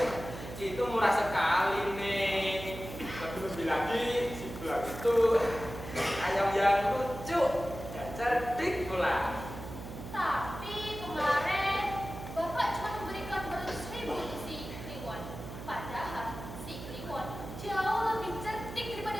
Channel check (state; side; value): noise; right; hum, 11 dB below the sound